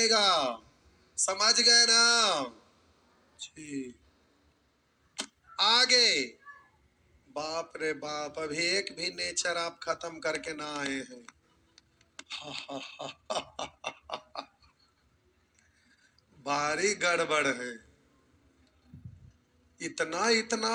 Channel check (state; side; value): identical; both; correlation 1.00